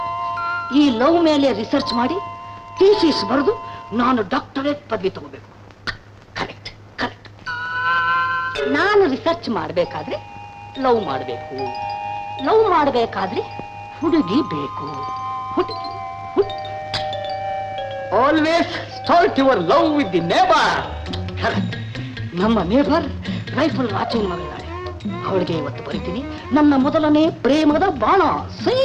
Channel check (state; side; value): identical; both; correlation 1.00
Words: ಈ ಲವ್ ಮೇಲೆ ರಿಸರ್ಚ್ ಮಾಡಿ ಥೀಸಿಸ್ ಬರೆದು ನಾನು ಡಾಕ್ಟರೇಟ್ ಪದವಿ ತಗೋಬೇಕು. ಕರೆಕ್ಟ್. ನಾನು ರಿಸರ್ಚ್ ಮಾಡಬೇಕಾದ್ರೆ ಲವ್ ಮಾಡಬೇಕು, ಲವ್ ಮಾಡಬೇಕಾದ್ರೆ ಹುಡುಗಿ ಬೇಕು. Always start your love with the neighbour. ನಮ್ಮ ನೇಬರ್ ರೈಫಲ್ ರಾಚೇನ್ ಮಗಳಿದ್ದಾಳೆ. ಅವಳಿಗೆ ಇವತ್ತು ಬರೀತೀನಿ ನನ್ನ ಮೊದಲನೇ ಪ್ರೇಮದ ಬಾಣ ಸೈ